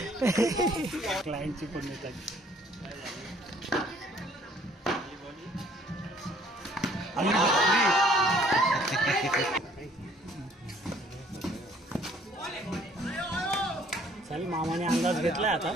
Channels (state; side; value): normal; both; correlation 0.59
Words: क्लायंटची पण येतात. चल मामाने अंदाज घेतलाय आता.